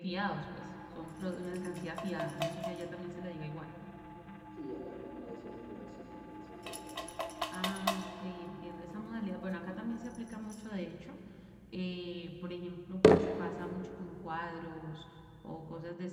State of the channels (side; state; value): both; identical; correlation 1.00